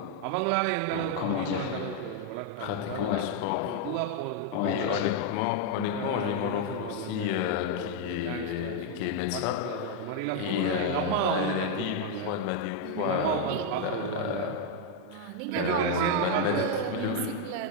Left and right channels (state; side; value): different; both; correlation 0.00